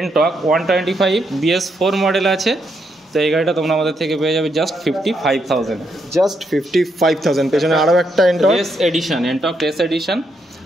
125 BS4 মডেল আছে। তো এই গাড়িটা তোমরা আমাদের থেকে পেয়ে যাবে জাস্ট 55,000। জাস্ট 55,000। পেছনে আরও একটা এনটক টেস এডিশন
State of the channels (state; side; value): normal; both; correlation 0.78